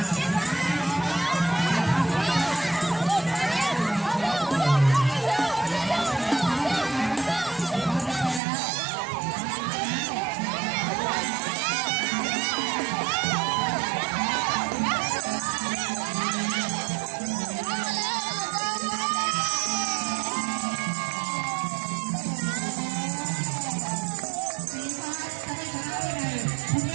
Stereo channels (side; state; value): left; drops out; at 8.4 s